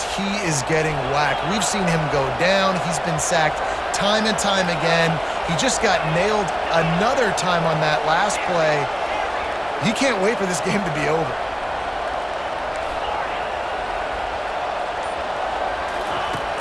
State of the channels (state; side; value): identical; both; correlation 1.00